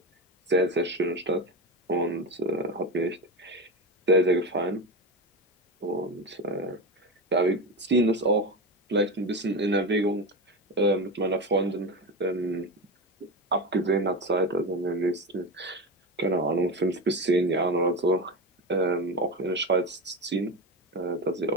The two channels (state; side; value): normal; both; correlation 0.20